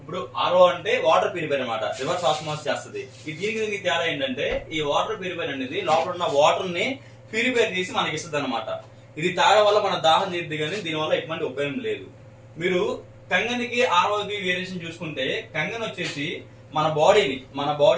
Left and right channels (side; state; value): both; identical; correlation 1.00